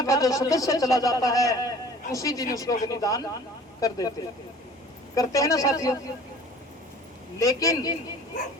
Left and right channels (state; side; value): normal; both; correlation 0.47